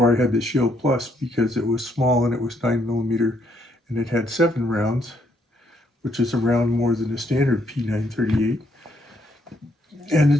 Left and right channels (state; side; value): normal; both; correlation 0.72